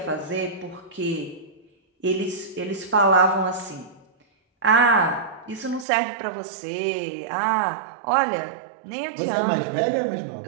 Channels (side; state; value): left; drops out; at 5.9 s